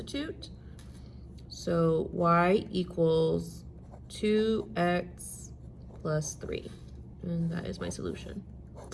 So y equals 2x plus 3, and that is my solution.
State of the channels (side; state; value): both; identical; correlation 1.00